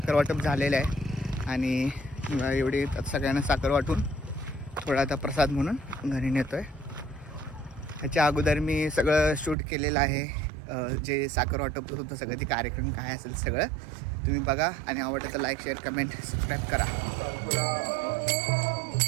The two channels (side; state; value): left; drops out; at 9.6 s